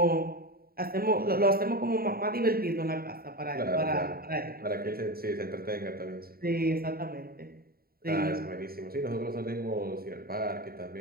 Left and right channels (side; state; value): left; late; 0.44 ms